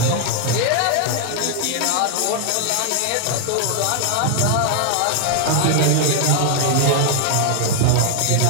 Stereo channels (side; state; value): both; different; correlation 0.00